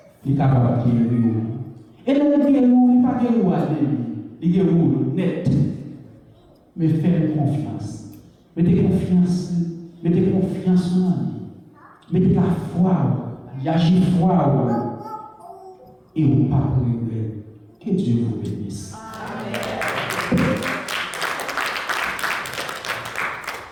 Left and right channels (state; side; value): identical; both; correlation 1.00